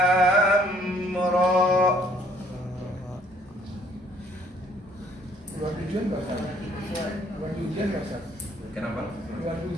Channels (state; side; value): normal; both; correlation 0.62